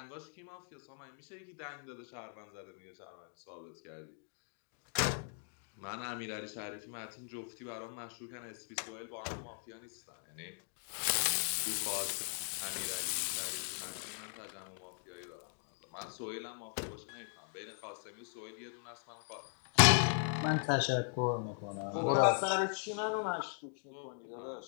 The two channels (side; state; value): right; silent; 52 dB below the other